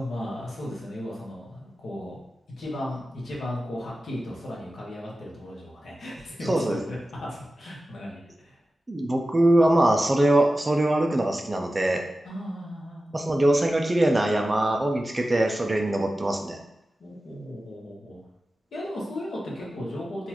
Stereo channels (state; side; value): normal; both; correlation 0.94